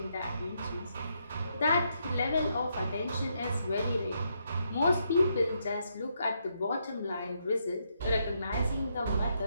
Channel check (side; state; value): both; inverted; correlation -0.78